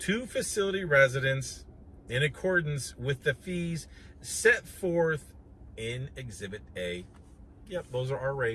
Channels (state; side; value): identical; both; correlation 1.00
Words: facility residents in accordance with the fees set forth in Exhibit A. Yep, those are our